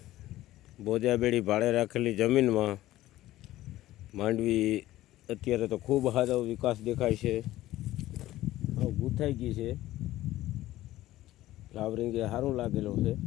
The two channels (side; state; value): right; quieter; 15.4 dB